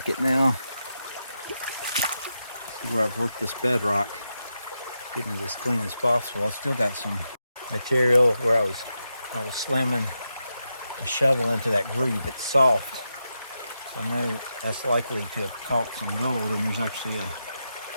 now. See where I've worked this bedrock, getting it as clean as possible. I still got some material where I was slamming a shovel into that groove. It's soft, so I know that's likely to have caught some gold, and there's actually a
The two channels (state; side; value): inverted; both; correlation -0.87